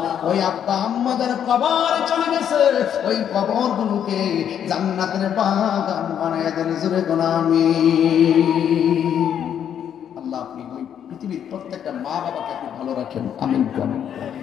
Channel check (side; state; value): right; quieter; 9.1 dB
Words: ওই আব্বা আম্মা যার কবরে চলে গেছে, ওই কবর গুলোকে জান্নাতের বাগান বানায় দেন। জোরে কোন আমিন। আল্লাহ আপনি ওই পৃথিবীর প্রত্যেকটা মা বাবাকে আপনি ভালো রাখেন, আমিন।